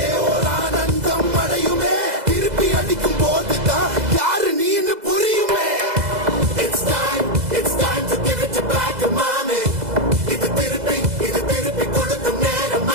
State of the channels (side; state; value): left; late; 2.0 ms